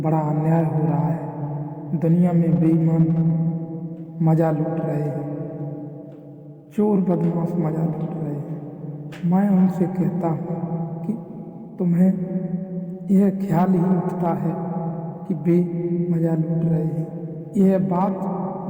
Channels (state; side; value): identical; both; correlation 1.00